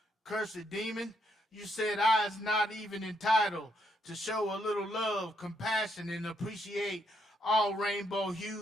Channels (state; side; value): normal; both; correlation 0.75